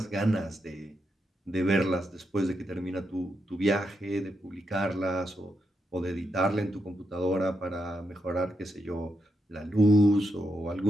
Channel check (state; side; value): normal; both; correlation 0.83